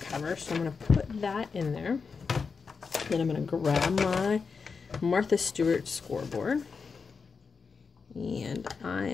so I'm going to put that in there. Then I'm going to grab my Martha Stewart scoreboard, and I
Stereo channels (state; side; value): quieter; right; 5.2 dB